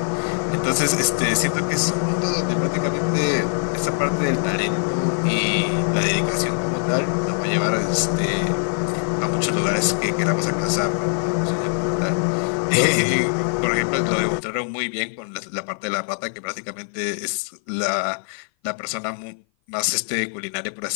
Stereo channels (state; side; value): silent; right; 56 dB below the other